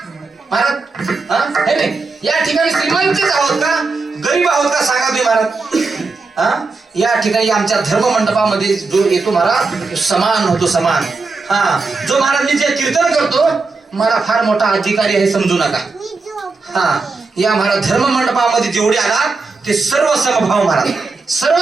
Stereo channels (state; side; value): quieter; left; 4.1 dB